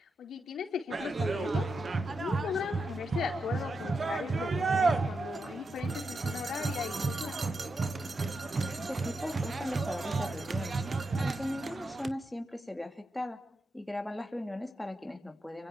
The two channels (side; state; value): both; normal; correlation 0.86